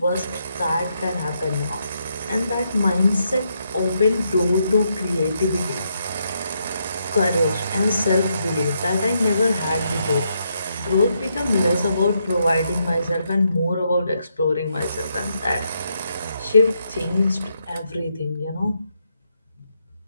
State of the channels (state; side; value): inverted; both; correlation -0.79